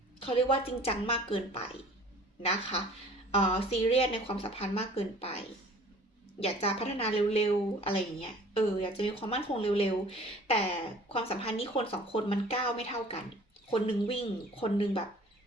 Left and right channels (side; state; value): both; normal; correlation 0.49